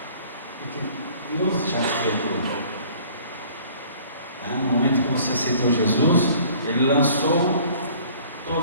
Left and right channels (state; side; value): inverted; both; correlation -0.52